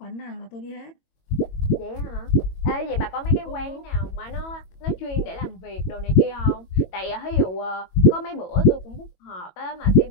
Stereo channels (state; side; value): late; right; 22 ms